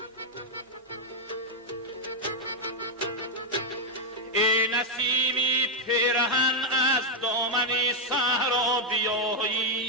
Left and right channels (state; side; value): normal; both; correlation 0.00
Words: ای نسیمی پیرهن از دامن صحرا